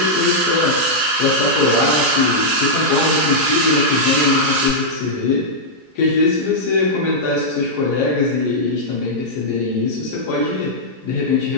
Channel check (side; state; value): both; normal; correlation -0.08